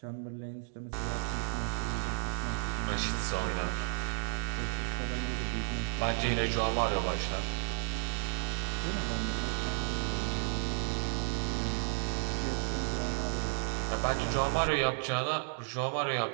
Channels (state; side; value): silent; left; digital silence